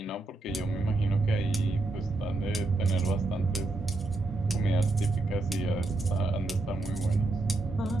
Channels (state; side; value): quieter; left; 3.1 dB